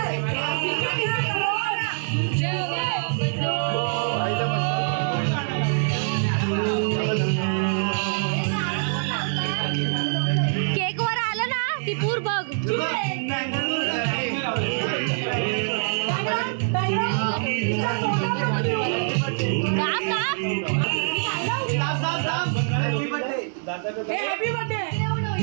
केक वर आलं ना ती पूर बघ.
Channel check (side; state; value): left; silent; 59 dB below the other